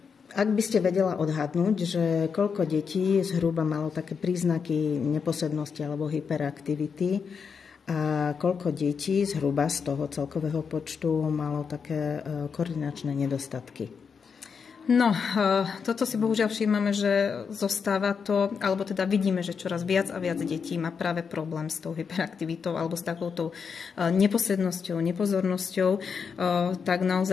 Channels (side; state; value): right; quieter; 6.1 dB